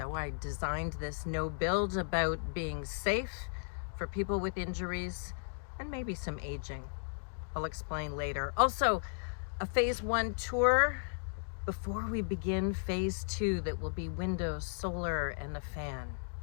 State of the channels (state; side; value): silent; right; digital silence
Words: I designed this no build about being safe for people with injuries and maybe some aging. I'll explain later. Also, a phase 1 tour before we begin phase 2 that will be windows, solar, and a fan.